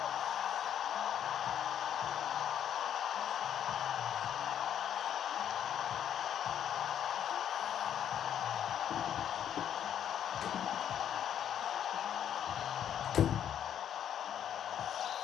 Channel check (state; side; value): quieter; right; 9.6 dB